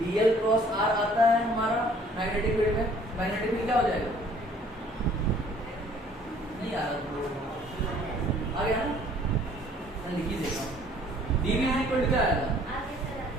क्रॉस आर आता है हमारा मैग्नेटिक फील्ड में, मैग्नेटिक फील्ड क्या हो जाएगा? नहीं आ रहा, आ गया ना, मैं लिख ही देता हूँ। डीवी इज इक्वल टू क्या आएगा?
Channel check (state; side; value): normal; both; correlation 0.57